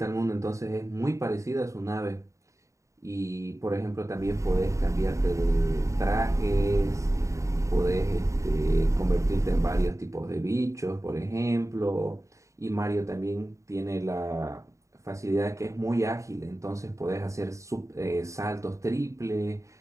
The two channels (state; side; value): late; left; 0.15 ms